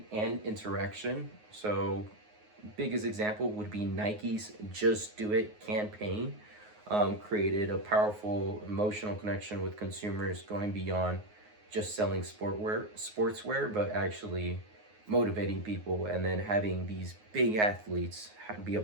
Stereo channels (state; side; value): late; left; 9.5 ms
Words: and interaction. So biggest example would be Nike's Just Do It campaign. Created a powerful emotional connection with consumers, going beyond just selling sportswear, but actually motivating people, and then having these big athletes be a